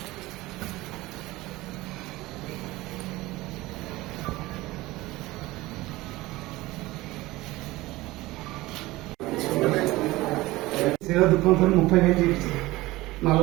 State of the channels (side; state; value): left; quieter; 19.2 dB